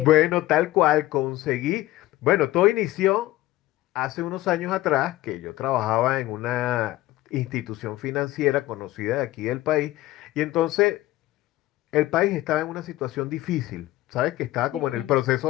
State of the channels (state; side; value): quieter; right; 16.7 dB